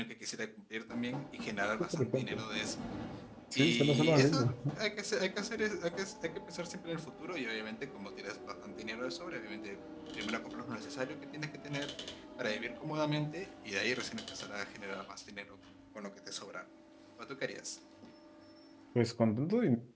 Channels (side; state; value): both; identical; correlation 1.00